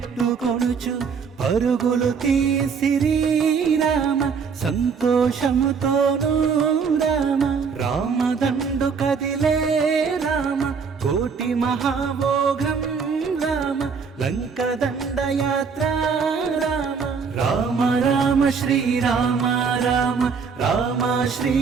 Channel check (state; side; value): quieter; left; 5.7 dB